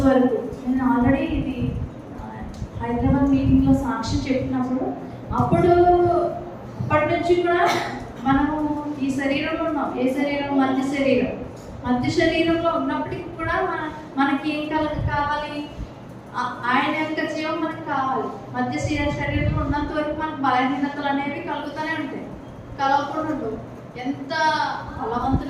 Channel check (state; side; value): identical; both; correlation 1.00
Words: వరకు నేను ఆల్రెడీ ఇది హైదరాబాద్ మీటింగ్లో సాక్ష్యం చెప్పినప్పుడు అప్పటి నుంచి కూడా మనము ఈ శరీరంలో ఉన్నాం. ఏ శరీరం? మధ్య శరీరంలో ఉన్నప్పటికీ కూడా మనకి ఏం కావాలి? ఆయన యొక్క జీవం మనకు కావాలి. మధ్య శరీరంలో ఉన్నంత వరకు మనకు బలహీనతలు అనేవి కలుగుతూనే ఉంటాయి, కలగకుండా ఉండవు. ఎంత